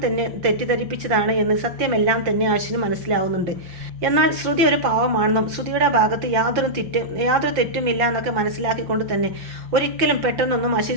തന്നെ തെറ്റിദ്ധരിപ്പിച്ചതാണ് എന്ന് സത്യമെല്ലാം തന്നെ അശ്വിന് മനസ്സിലാവുന്നുണ്ട്. എന്നാൽ ശ്രുതി ഒരു പാവമാണെന്നും ശ്രുതിയുടെ ഭാഗത്ത് യാതൊരു തെറ്റുമില്ല എന്നൊക്കെ മനസ്സിലാക്കിക്കൊണ്ട് തന്നെ ഒരിക്കലും പെട്ടെന്നൊന്നും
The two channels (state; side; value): late; left; 5.7 ms